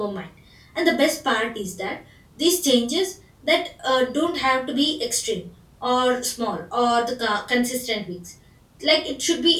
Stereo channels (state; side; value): identical; both; correlation 1.00